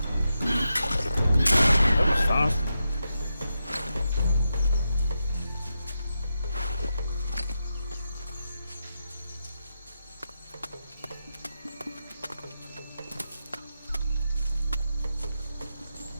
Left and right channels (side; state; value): both; inverted; correlation -0.88